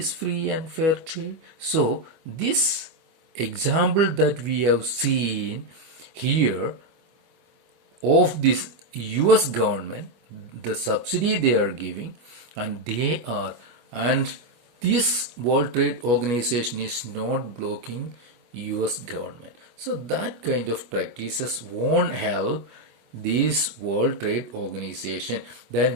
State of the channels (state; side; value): late; left; 25 ms